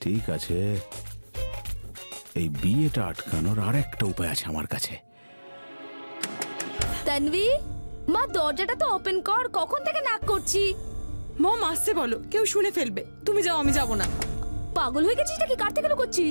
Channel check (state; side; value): inverted; both; correlation -1.00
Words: ঠিক আছে, এই বিয়েটা আটকানোর আর একটা উপায় আছে আমার কাছে। তানভি, মা দরজাটা তো ওপেন কর, কখন থেকে নাক করছি। মম আসতে বলো, কেউ শুনে ফেলবে। তুমি যাও, আমি যাব না। পাগল হয়ে গেছিস নাকি? কার থেকে